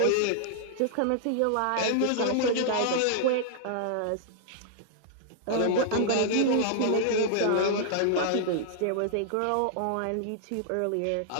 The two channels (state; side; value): different; both; correlation -0.01